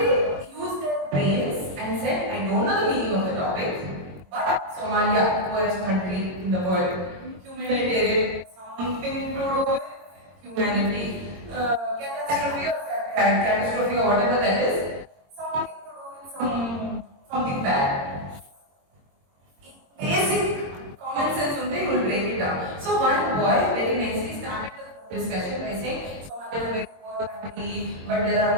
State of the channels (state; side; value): late; left; 22 ms